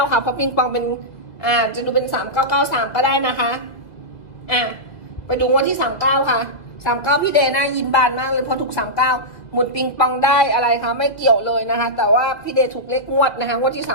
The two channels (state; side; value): late; right; 2.0 ms